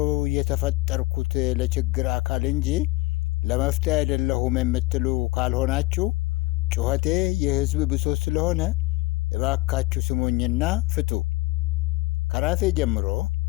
የተፈጠርኩት ለችግር አካል እንጂ ለመፍትሄ አይደለሁም የምትሉ ካልሆናችሁ ጩኸቴ የሕዝብ ብሶት ስለሆነ እባካችሁ ስሙኝና ፍቱ። ከራሴ ጀምሮ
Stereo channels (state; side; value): quieter; right; 21.5 dB